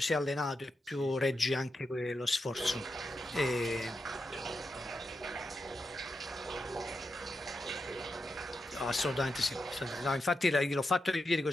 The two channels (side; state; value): both; normal; correlation 0.87